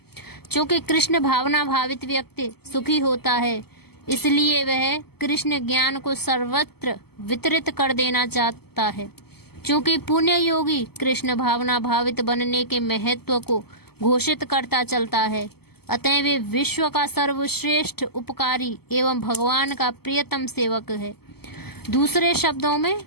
चूंकि कृष्ण भावना भावित व्यक्ति सुखी होता है, इसलिए वह कृष्ण ज्ञान को सर्वत्र वितरित कर देना चाहता है। क्योंकि पुण्य योगी कृष्ण भावना भावित बनने के महत्व को घोषित करता चलता है, अतः वे विश्व का सर्वश्रेष्ठ उपकारी एवं भगवान का प्रियतम सेवक है। दूसरे शब्दों में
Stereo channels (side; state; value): right; late; 0.96 ms